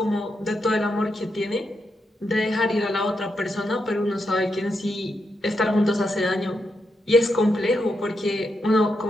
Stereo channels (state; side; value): normal; both; correlation 0.83